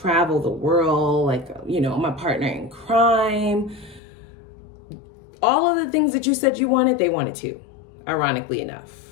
the world, like, you know, my partner in crime. All of the things that you said you wanted, they wanted to, ironically enough.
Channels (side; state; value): right; drops out; at 4.0 s